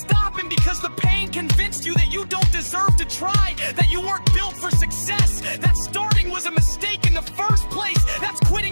because the pain convinced you that you don't deserve to try, that you weren't built for success, that starting was a mistake in the first place. That's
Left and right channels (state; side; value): inverted; both; correlation -1.00